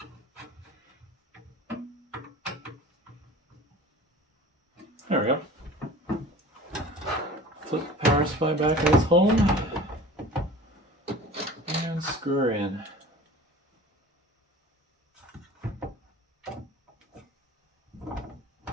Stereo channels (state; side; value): normal; both; correlation 0.41